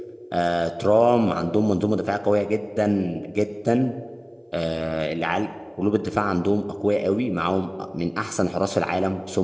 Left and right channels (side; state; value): both; identical; correlation 1.00